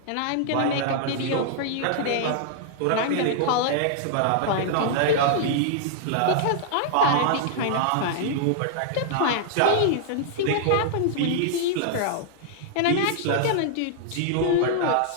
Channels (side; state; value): both; different; correlation -0.01